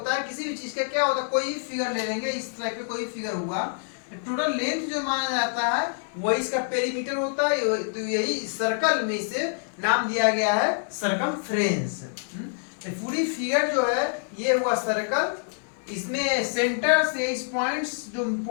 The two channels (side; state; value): right; silent; 60 dB below the other